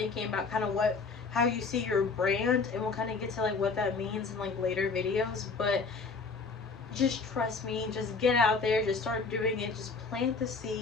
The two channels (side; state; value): right; quieter; 4.4 dB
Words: about kind of how you see your brand, and we'll kind of get to like what that means in like later videos. But just trust me, just get out there, just start doing it, just plant the